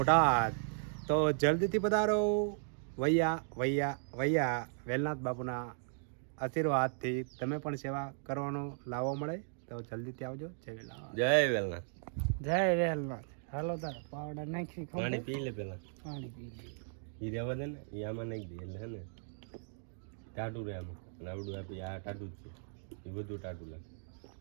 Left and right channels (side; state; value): left; silent; digital silence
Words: તો જલ્દીથી પધારો. વૈયા વેલનાથ બાપુના આશીર્વાદથી તમે પણ સેવા કરવાનો લાવો મળે તો જલ્દીથી આવજો. જય વેલનાથ. જય વેલનાથ. જય વેલનાથ. હાલો તાર પાવડા નાખી પાણી પી લે પેલા. પાણી પી લે. ઈ રહેવા દે ને, ઈ આમાં નાખી દે એટલે હે ને ટાટું રહે આમાં. અને આવડું આપી આ ટાટું જ છે, એ બધું ટાટું લાગે.